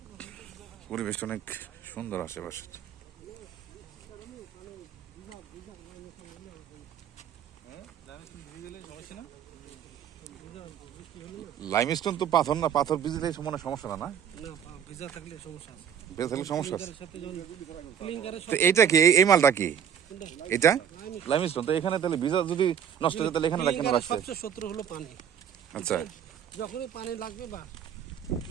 পরিবেশটা অনেক সুন্দর আশেপাশে। লাইমস্টোন তো পাথর না, পাথর ভিজলে মনে সমস্যা না, ভিজা থাকলে সমস্যা আছে। তো এইটা কি, এই মালটা কি এটা? লাইমস্টোন। তো এখানে তাহলে ভিজা যদি নষ্ট হয়ে তাহলে এখানে কেন রাখছে? সবচেয়ে শত্রু হলো পানি। আচ্ছা, যখনই পানি লাগবে বা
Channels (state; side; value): quieter; left; 8.4 dB